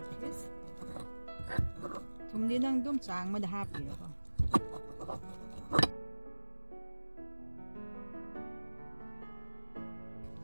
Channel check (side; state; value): both; inverted; correlation -1.00